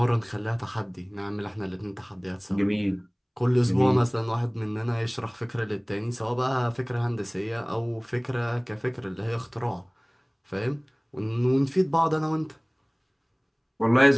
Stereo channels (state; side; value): identical; both; correlation 1.00